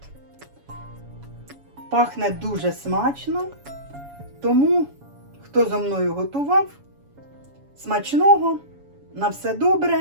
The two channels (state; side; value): late; left; 7.1 ms